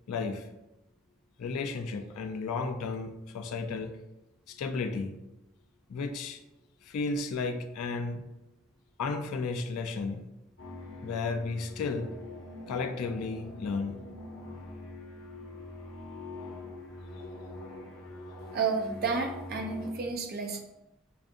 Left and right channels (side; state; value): both; normal; correlation 0.34